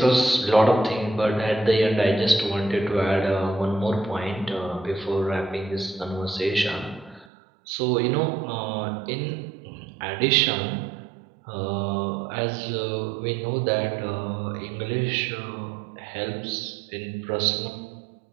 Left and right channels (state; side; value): drops out; left; at 7.2 s